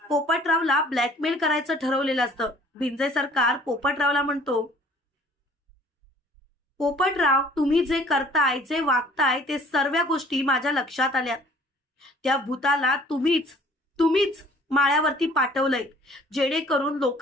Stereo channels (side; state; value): both; normal; correlation 0.54